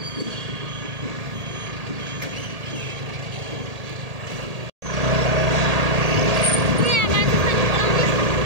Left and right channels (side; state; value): left; late; 1.8 ms